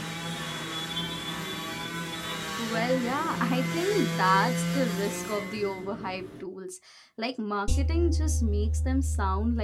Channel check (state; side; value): identical; both; correlation 1.00